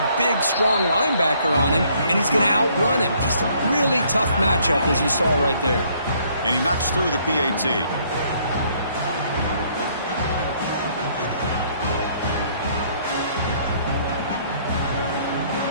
big, strong linebacker on him, and he's going to outrun him. Just a really tough matchup, as you saw right there. And he knocks through the PAT.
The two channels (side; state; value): both; inverted; correlation -0.64